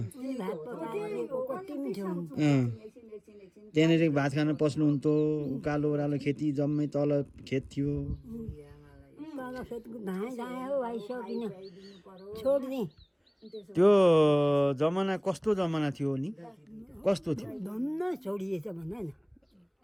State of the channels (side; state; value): both; identical; correlation 1.00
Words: उनी भात पकाएको कति मिठो हुन्छ त्यहाँनिर भात खान पस्नुहुन्थ्यो उकालो ओह्रालो खेती जम्मै तल खेत थियो तल खेतको धाए धाए हो आइसकिन छोडिदिएँ त्यो जमाना कस्तो जमाना थियो नि कस्तो थियो धन्न छोडिएछ भन न